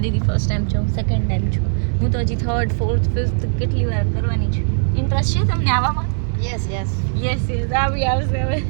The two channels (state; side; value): silent; left; digital silence